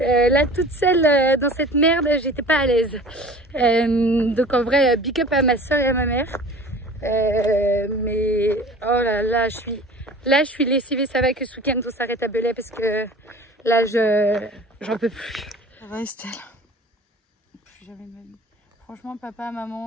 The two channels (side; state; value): both; normal; correlation 0.43